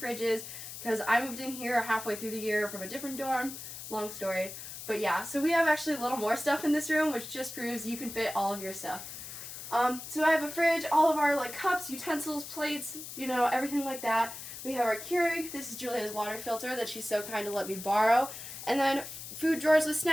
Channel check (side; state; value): left; noise; hiss, 10 dB below the sound